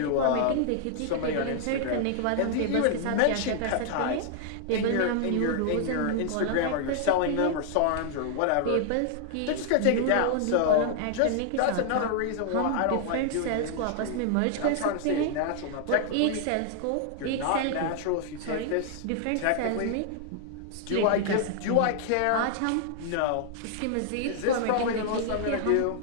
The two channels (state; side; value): different; both; correlation -0.01